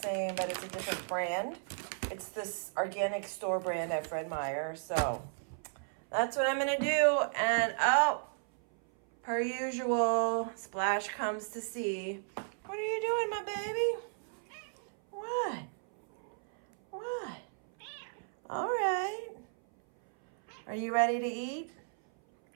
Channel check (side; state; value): left; silent; 55 dB below the other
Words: but it's a different brand. It's this organic store brand at Fred Meyer. So that's what I'm gonna do. And oh, per usual, Splash comes to see. What are you doing, my baby? What? What? All right. Are you ready to eat?